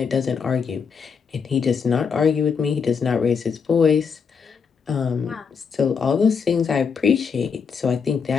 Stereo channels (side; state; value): right; quieter; 6.0 dB